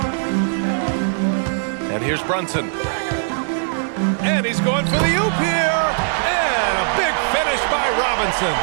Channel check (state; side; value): silent; left; digital silence